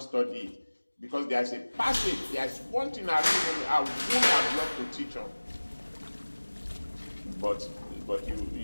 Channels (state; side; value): inverted; both; correlation -1.00